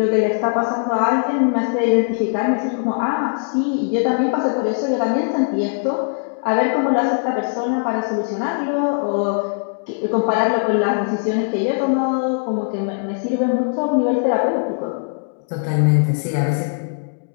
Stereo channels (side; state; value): right; silent; digital silence